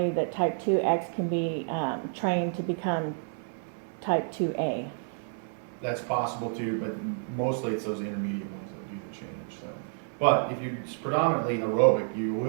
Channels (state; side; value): silent; left; 58 dB below the other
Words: that type 2X can be trained to become type 2A. That's possible too, but mostly it's those intermediate ones that do the change. So, but if you're predominantly aerobic, you